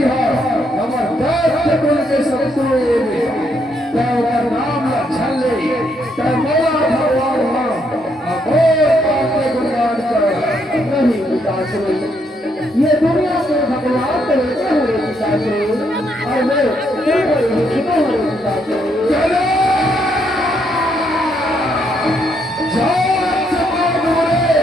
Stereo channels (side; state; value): both; normal; correlation 0.74